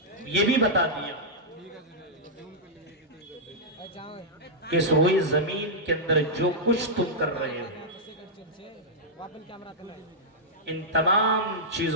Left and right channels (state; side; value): normal; both; correlation -0.09